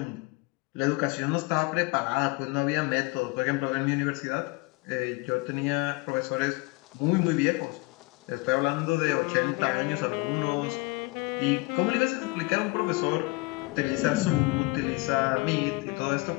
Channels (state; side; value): quieter; right; 24.9 dB